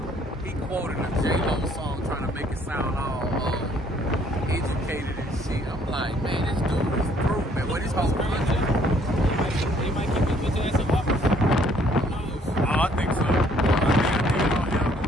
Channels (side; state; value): both; normal; correlation 0.62